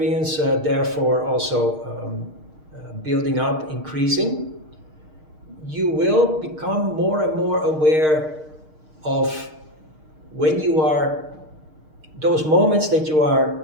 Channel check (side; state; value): left; late; 6.5 ms